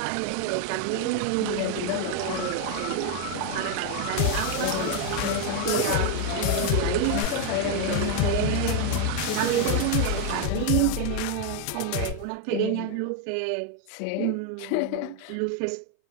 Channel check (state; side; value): different; both; correlation 0.01